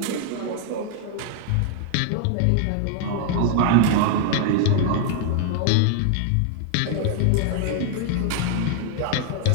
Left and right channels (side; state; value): both; different; correlation 0.00